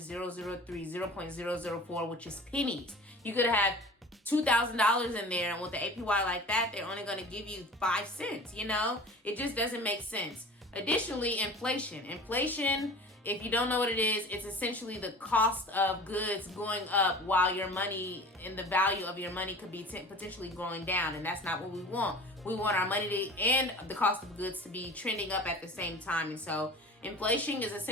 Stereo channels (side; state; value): both; normal; correlation 0.40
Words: 0.004, which is pennies. You could have $2,000 in there, and with the APY like that, they're only going to give you 5 cents, It just doesn't make sense. Additionally, inflation, if you don't know what it is, it's essentially the cost of goods going up while your money and the value of your money could be potentially going down. And that's not what we want. We want our money and the cost of goods to be trending up at the same time. And so inflation is